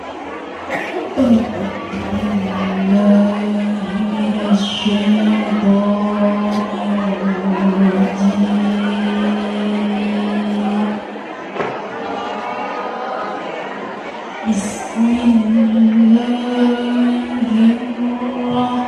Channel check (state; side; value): identical; both; correlation 1.00